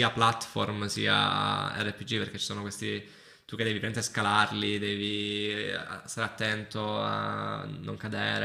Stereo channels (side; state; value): both; identical; correlation 1.00